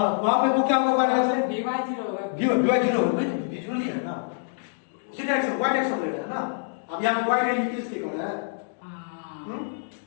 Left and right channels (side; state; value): right; silent; digital silence